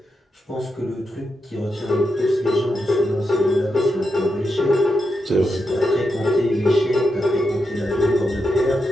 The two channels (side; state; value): both; normal; correlation 0.86